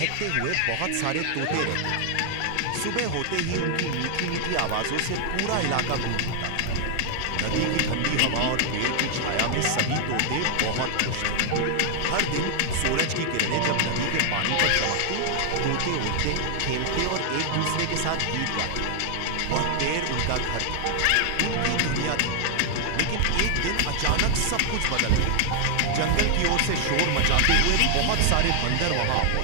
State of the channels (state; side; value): different; both; correlation 0.00